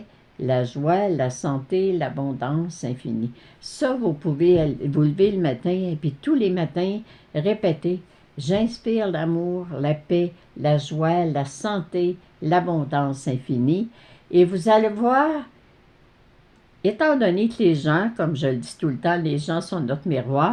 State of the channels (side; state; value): both; identical; correlation 1.00